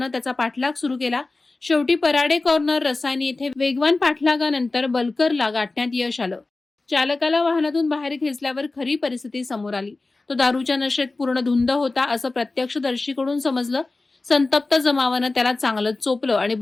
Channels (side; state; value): right; quieter; 3.4 dB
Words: त्याचा पाठलाग सुरू केला. शेवटी पराडे कॉर्नर रसायनी येथे वेगवान पाठलागानंतर बल्करला गाठण्यात यश आलं. चालकाला वाहनातून बाहेर खेचल्यावर खरी परिस्थिती समोर आली. तो दारूच्या नशेत पूर्ण धुंद होता असं प्रत्यक्षदर्शीकडून समजलं. संतप्त जमावानं त्याला चांगलंच चोपलं आणि